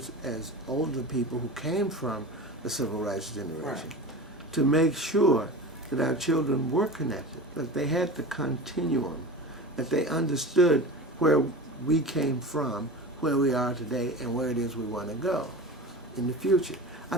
as older people who came from the civil rights generation, to make sure that our children were connected, that they had the continuum, that they understood where we came from, where we are today, and where it is we want to go in the future. I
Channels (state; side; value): normal; both; correlation 0.31